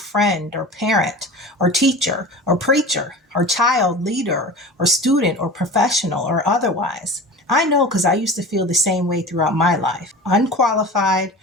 or parent or teacher or preacher or child leader or student or professional or otherwise. I know because I used to feel the same way throughout my life. Unqualified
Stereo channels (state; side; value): normal; both; correlation 0.34